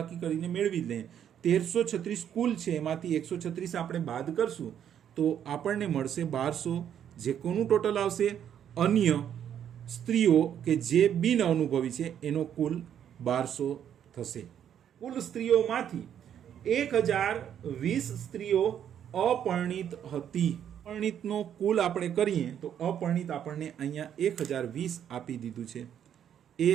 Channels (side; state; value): left; quieter; 9.4 dB